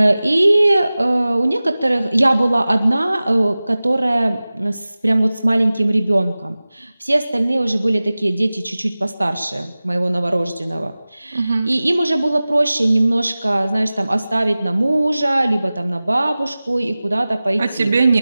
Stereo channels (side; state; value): both; inverted; correlation -0.97